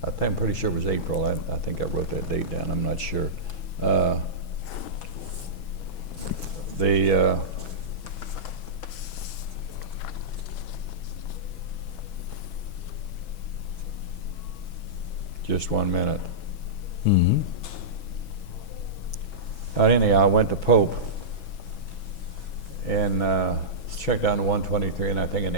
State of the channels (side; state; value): right; late; 6.1 ms